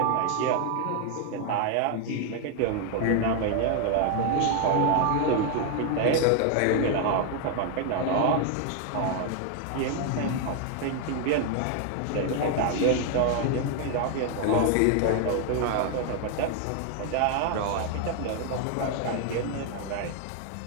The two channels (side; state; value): both; different; correlation 0.00